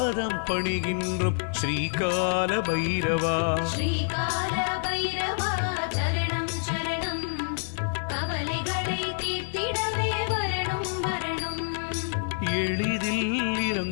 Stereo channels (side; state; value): right; silent; digital silence